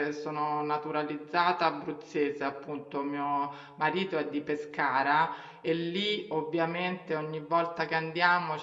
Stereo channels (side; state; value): both; identical; correlation 1.00